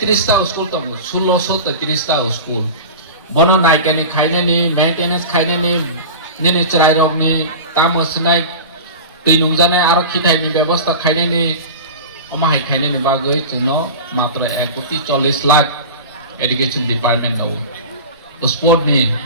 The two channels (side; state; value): both; inverted; correlation -0.31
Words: টা school তো 1633 টা school বনো নাইকানি খাইনে নি maintenance খাইনে নি নিনি চরাই রগনি তামসনাই তৈনুমজানে আরো খিথাইনি ব্যবস্থা খাইনে নি অমাহাই খাইনে নি বাগৈ চুনো মাত্র 1.40 লাখ এডুকেশন ডিপার্টমেন্ট দাও স্পোর্ট নি